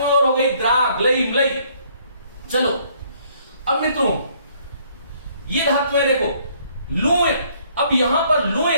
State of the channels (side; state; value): both; inverted; correlation -0.64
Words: और हो गई, द्रा, ग्लई, म्लई। चलो अब मित्रों ये धातुएं देखो, लुए, अब यहां पर लुए,